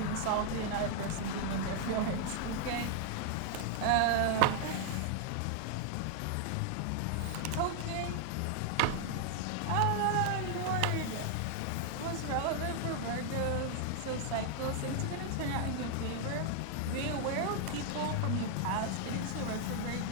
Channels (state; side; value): different; both; correlation 0.00